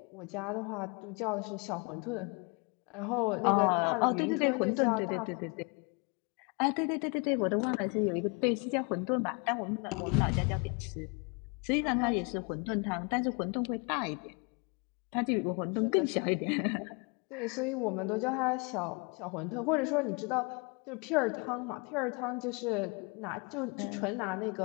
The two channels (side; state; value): right; quieter; 32.0 dB